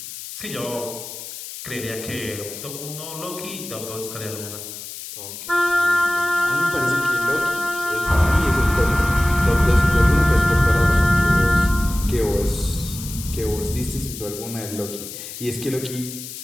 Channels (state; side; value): noise; left; hiss, 11 dB below the sound